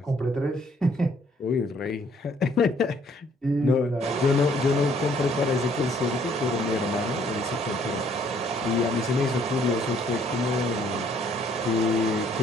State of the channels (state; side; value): normal; both; correlation 0.64